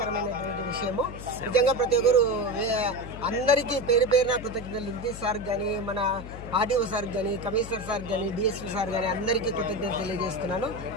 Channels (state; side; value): noise; left; hum, 11 dB below the sound